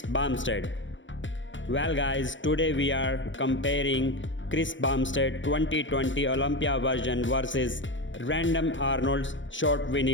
Bumstead. Well guys, today we are comparing Chris Bumstead 2020 Olympia version versus random Arnold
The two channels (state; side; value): late; right; 0.55 ms